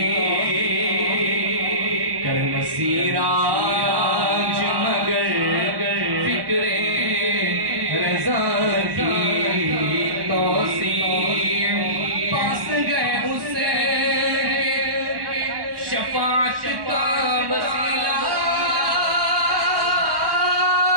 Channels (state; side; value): late; left; 1.1 ms